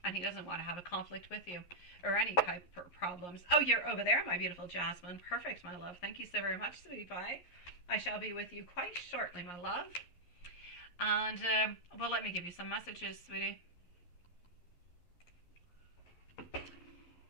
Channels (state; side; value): late; right; 11 ms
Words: And he doesn't want to have a conflict with you or any type of problems. Oh, you're over there, my beautiful Jasmine. Perfect, my love. Thank you so very much, sweetie pie. I shall be with you quite shortly, my love. And, well, let me give you some messages, sweetie.